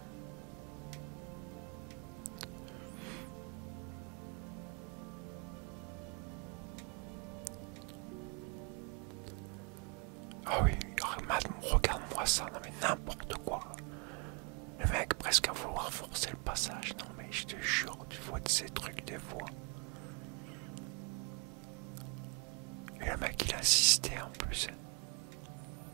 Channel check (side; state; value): left; quieter; 32.7 dB